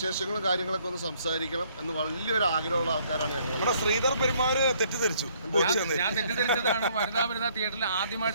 കാര്യങ്ങളൊക്കെ ഒന്ന് സംസാരിക്കണം എന്ന് വലിയൊരു ആഗ്രഹമുള്ള ആൾക്കാരാണ് ഞങ്ങൾ. നമ്മുടെ ശ്രീധർ പെരുമാറ് തെറ്റിദ്ധരിച്ചു. ഞാൻ തെറ്റിദ്ധരിച്ചതാണ്. വനിതാ തിയേറ്ററിൽ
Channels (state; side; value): inverted; both; correlation -0.65